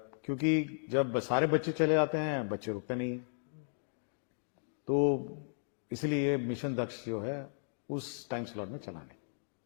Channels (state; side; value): silent; right; digital silence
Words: क्योंकि जब सारे बच्चे चले जाते हैं बच्चे रुकते नहीं, तो इसलिए मिशन दक्ष जो है उस टाइम स्लॉट में चलाने।